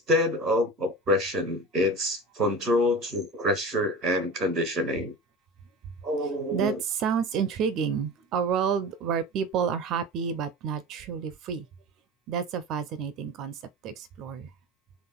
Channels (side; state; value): both; normal; correlation 0.32